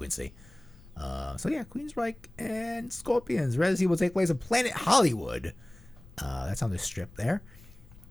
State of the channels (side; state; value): left; noise; rumble, 22 dB below the sound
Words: So yeah, Queensryche and Scorpions. Residency will take place at Planet Hollywood. That's on the strip there.